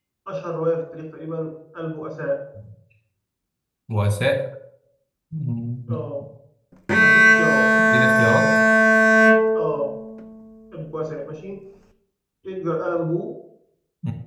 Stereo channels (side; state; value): both; identical; correlation 1.00